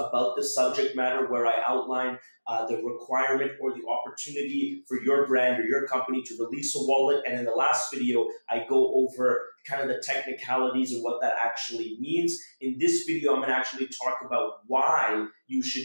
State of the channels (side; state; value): both; inverted; correlation -1.00